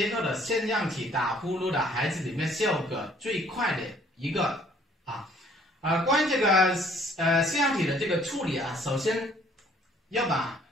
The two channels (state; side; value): normal; both; correlation 0.59